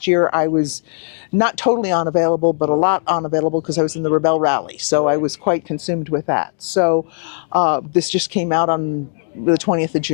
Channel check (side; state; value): right; silent; digital silence